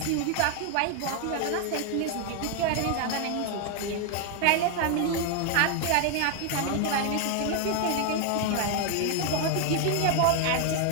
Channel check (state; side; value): different; both; correlation 0.00